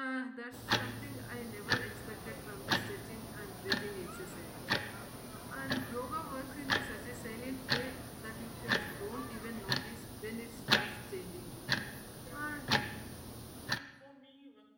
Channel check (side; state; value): both; identical; correlation 1.00